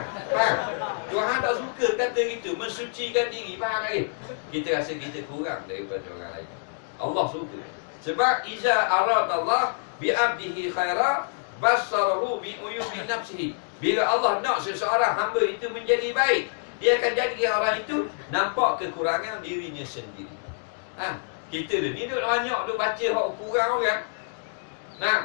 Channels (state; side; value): silent; right; digital silence